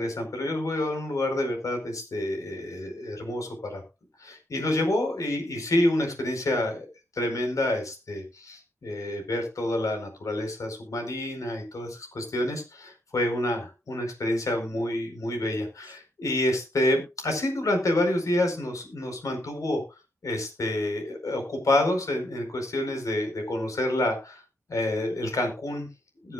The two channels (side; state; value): both; normal; correlation 0.75